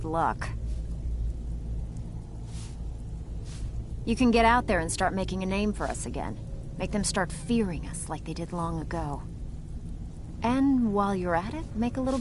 luck. You can get out there and start making a name for us again. Make them start fearing us like they did long ago. And while you're at it, make a little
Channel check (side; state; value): both; identical; correlation 1.00